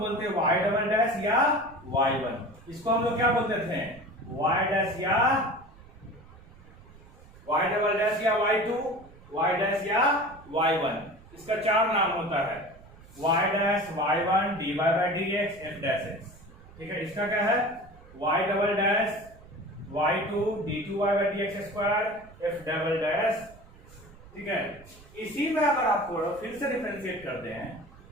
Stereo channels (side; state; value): right; noise; rumble, 22 dB below the sound